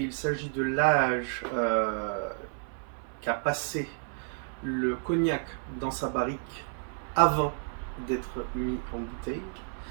s'agit de l'âge qu'a passé le cognac dans sa barrique avant d'être mis en bouteille.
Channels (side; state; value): left; silent; 57 dB below the other